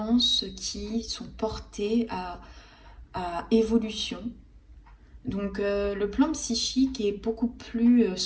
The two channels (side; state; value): both; identical; correlation 1.00